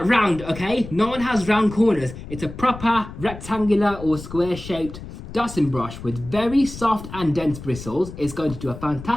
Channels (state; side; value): noise; left; rumble, 13 dB below the sound